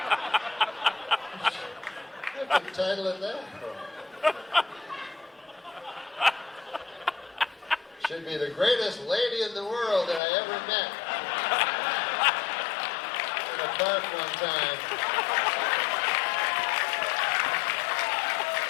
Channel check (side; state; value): right; drops out; at 10.2 s